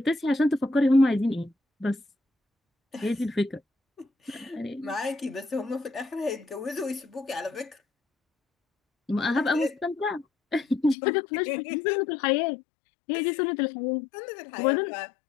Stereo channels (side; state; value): right; drops out; at 11.0 s